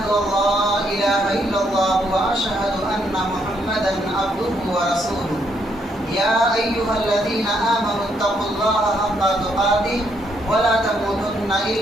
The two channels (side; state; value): both; normal; correlation 0.74